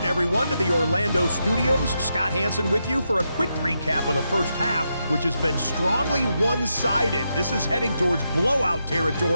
everyone, to the Orlando studios. Scott Hansen with you for a quick recap of the first half, which has been strongly one-sided. This is heading towards blowout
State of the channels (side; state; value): both; inverted; correlation -0.84